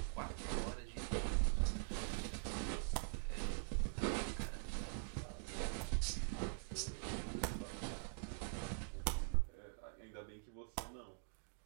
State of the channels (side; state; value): left; silent; digital silence